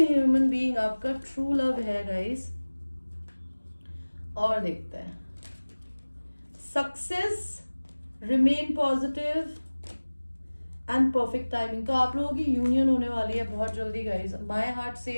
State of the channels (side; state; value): both; inverted; correlation -1.00